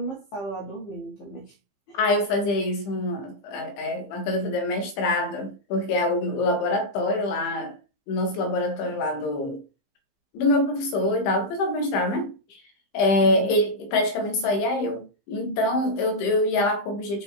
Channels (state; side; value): late; right; 15 ms